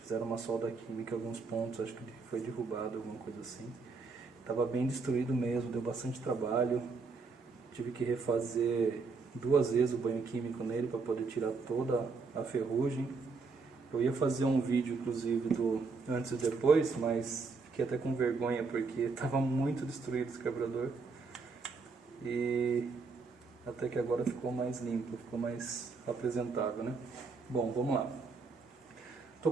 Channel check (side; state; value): left; quieter; 4.4 dB